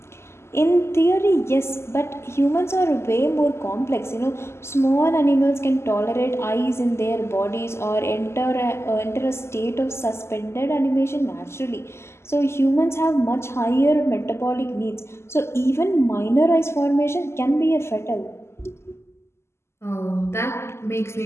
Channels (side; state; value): right; late; 0.13 ms